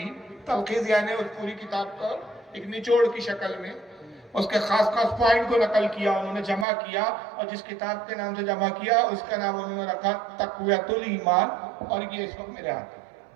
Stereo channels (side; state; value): left; drops out; at 6.7 s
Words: تلخیص یعنی اس پوری کتاب کا ایک نچوڑ کی شکل میں اس کے خاص خاص پوائنٹ کو نقل کیا، انہوں نے جمع کیا. اور جس کتاب کے نام سے جمع کیا اس کا نام انہوں نے رکھا تقویۃ الایمان. اور یہ اس وقت میرے ہاتھ ہے.